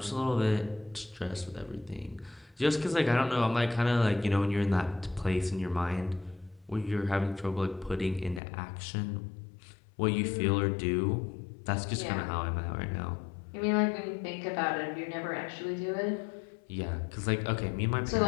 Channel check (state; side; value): drops out; right; at 8.4 s